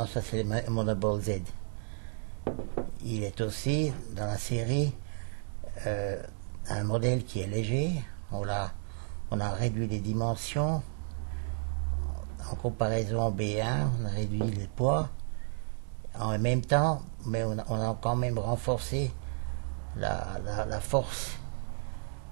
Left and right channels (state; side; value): silent; left; digital silence